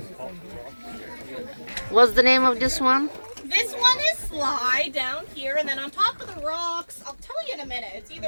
What's the name of this one? This one is Sly down here, and then on top of the rocks, I'll tell you in a minute, it's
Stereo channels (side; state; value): both; inverted; correlation -1.00